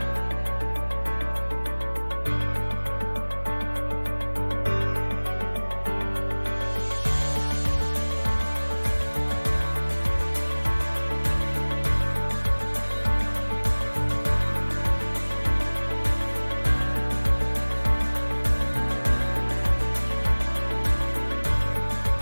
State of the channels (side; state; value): both; inverted; correlation -1.00